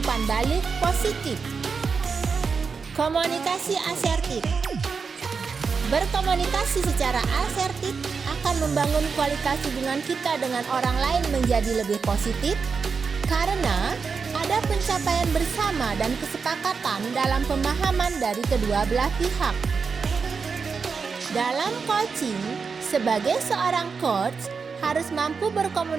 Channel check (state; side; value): quieter; left; 5.3 dB